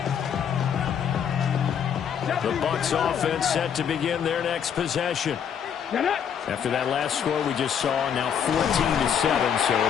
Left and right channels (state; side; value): quieter; right; 8.1 dB